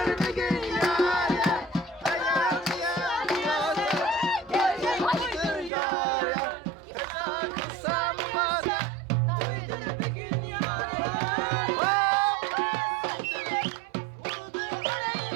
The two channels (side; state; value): left; drops out; at 5.7 s